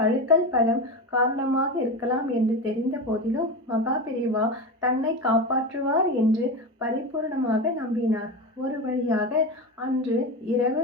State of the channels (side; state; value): both; normal; correlation 0.21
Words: அழுக்கல் பழம் காரணமாக இருக்கலாம் என்று தெரிந்த போதிலும் மகா பெரியவா தன்னை காப்பாற்றுவார் என்று பரிபூர்ணமாக நம்பினார். ஒரு வழியாக அன்று இரவு